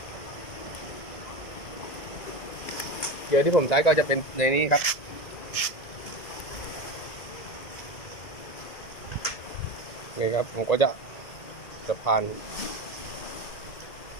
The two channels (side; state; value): right; late; 1.9 ms